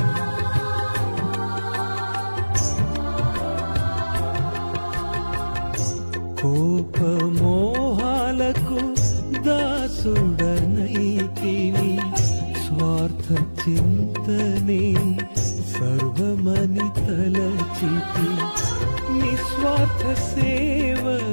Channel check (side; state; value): both; inverted; correlation -1.00